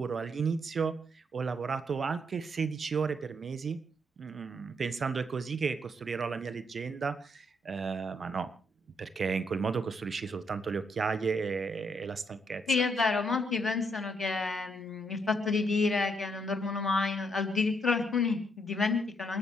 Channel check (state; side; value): normal; both; correlation 0.74